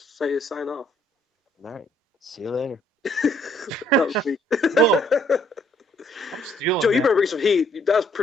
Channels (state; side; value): normal; both; correlation 0.66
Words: Say a sign off. All right. See you later. That was weak. Whoa, I'm Joe, stealing you that. better bring some heat. That was